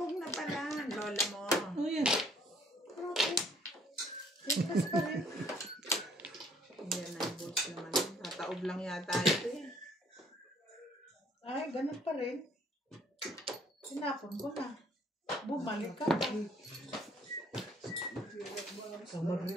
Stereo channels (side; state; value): both; normal; correlation 0.61